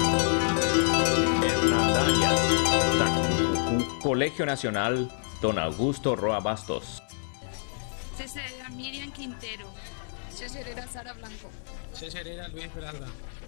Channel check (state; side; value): silent; right; 60 dB below the other